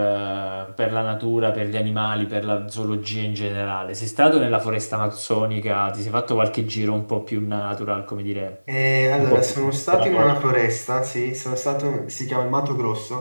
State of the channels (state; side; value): inverted; both; correlation -1.00